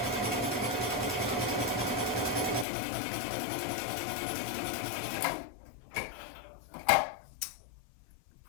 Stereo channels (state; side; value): drops out; right; at 2.7 s